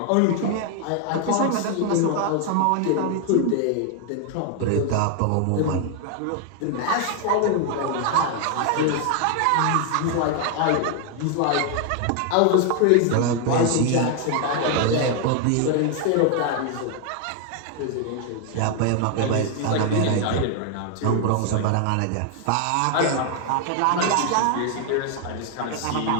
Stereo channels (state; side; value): different; both; correlation 0.00